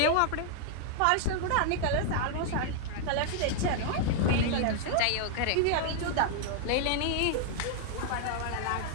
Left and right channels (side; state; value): both; different; correlation -0.01